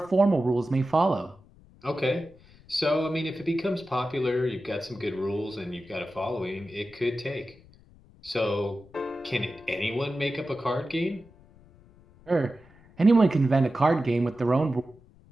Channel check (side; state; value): left; noise; rumble, 26 dB below the sound